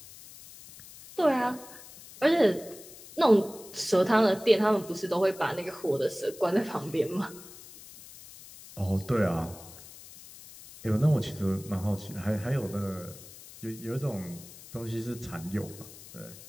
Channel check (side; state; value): left; noise; hiss, 18 dB below the sound